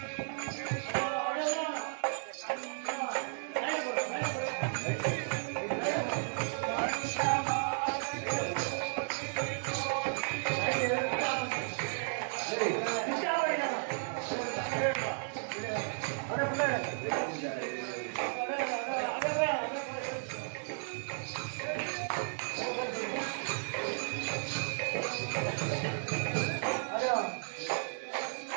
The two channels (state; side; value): silent; left; 55 dB below the other